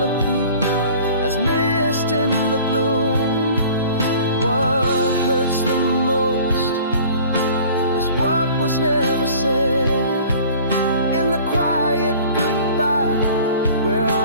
as mist in the gloom. What hurts the most is what was never said, in the quiet goodbye where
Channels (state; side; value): inverted; both; correlation -0.47